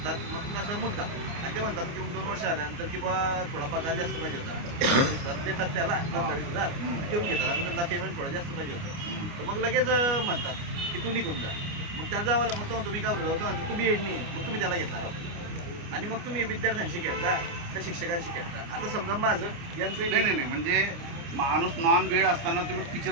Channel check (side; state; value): left; late; 29 ms